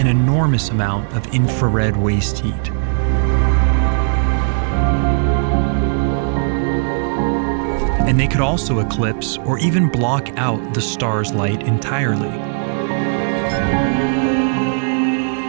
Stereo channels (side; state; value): left; silent; digital silence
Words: enormous amount of infrared waste heat. And they could also eclipse or even block out the star's light entirely.